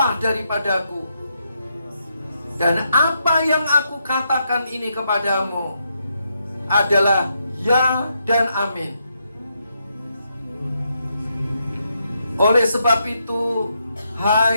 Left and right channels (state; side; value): inverted; both; correlation -0.80